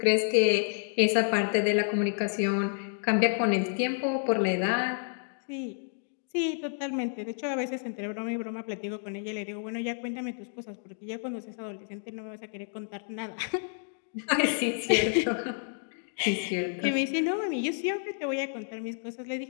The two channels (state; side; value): silent; right; digital silence